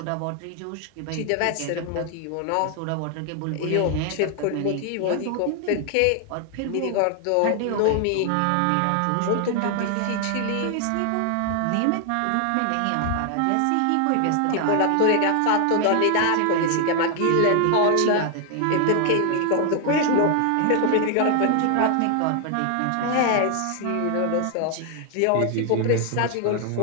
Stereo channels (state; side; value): different; both; correlation 0.00